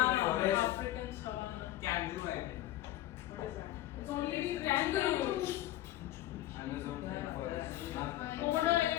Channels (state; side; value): quieter; right; 14.6 dB